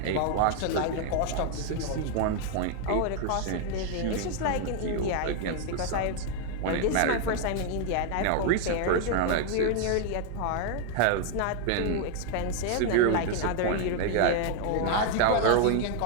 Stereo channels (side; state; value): both; different; correlation 0.00